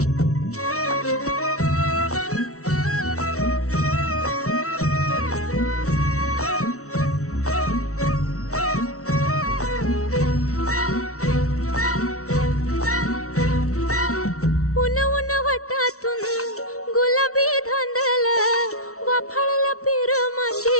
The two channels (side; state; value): right; late; 0.64 ms